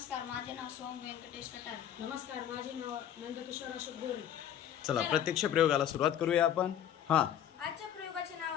माझे नाव सोम व्यंकटेश कटार. नमस्कार, माझे नाव नंदकिशोर अशोक गोरे. चला प्रत्यक्ष प्रयोगाला सुरुवात करूया आपण. आजच्या प्रयोगाचे नाव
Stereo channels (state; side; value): quieter; right; 10.2 dB